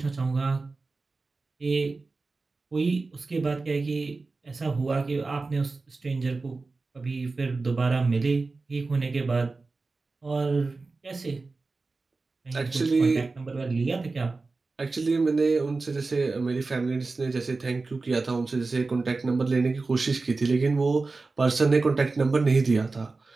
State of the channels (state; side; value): quieter; left; 3.8 dB